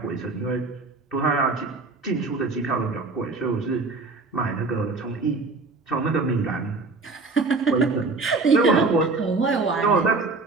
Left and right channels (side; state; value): left; quieter; 3.8 dB